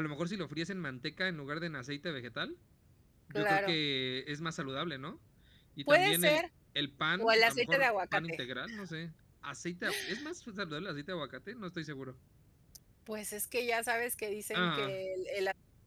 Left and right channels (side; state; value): both; identical; correlation 1.00